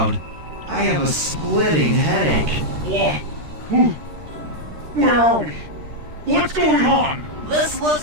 I have a splitting headache. What? Where are we? What's going on? This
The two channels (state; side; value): late; left; 13 ms